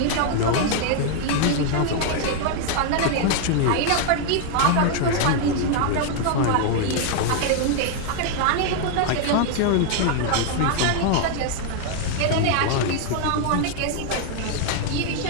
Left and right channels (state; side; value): different; both; correlation 0.00